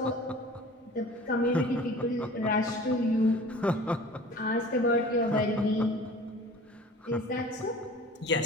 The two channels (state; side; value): normal; both; correlation 0.43